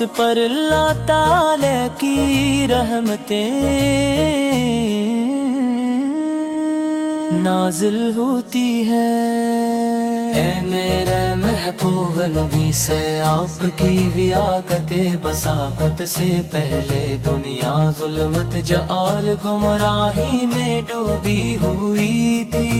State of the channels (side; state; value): both; identical; correlation 1.00